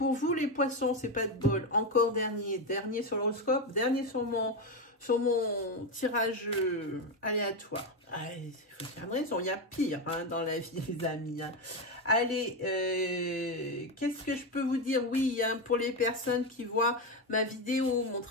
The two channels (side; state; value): both; normal; correlation 0.11